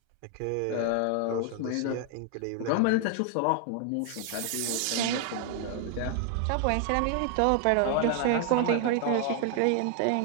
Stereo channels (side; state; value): both; different; correlation 0.00